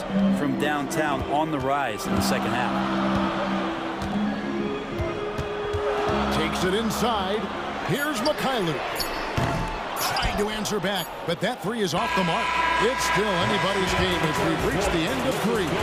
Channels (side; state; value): both; identical; correlation 1.00